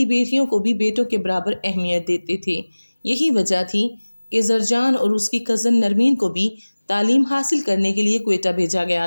بیٹیوں کو بھی بیٹوں کے برابر اہمیت دیتے تھے۔ یہی وجہ تھی کہ زرجان اور اس کی کزن نرمین کو بھی تعلیم حاصل کرنے کے لیے کوئٹہ بھیجا گیا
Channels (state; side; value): inverted; both; correlation -1.00